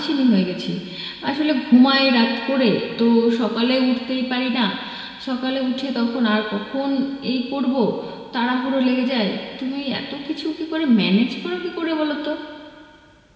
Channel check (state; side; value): identical; both; correlation 1.00